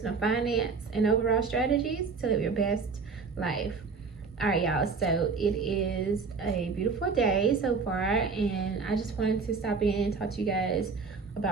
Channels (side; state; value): left; quieter; 4.9 dB